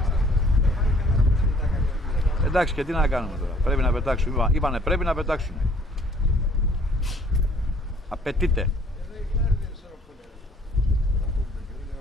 Εντάξει, και τι να κάνουμε τώρα, πρέπει να πετάξουμε, είπανε πρέπει να πετάξουμε. Απαιτείται.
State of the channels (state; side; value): normal; both; correlation 0.59